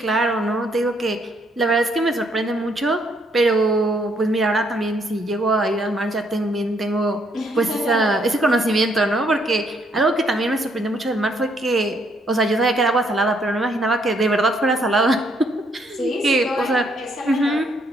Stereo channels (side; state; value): both; normal; correlation 0.70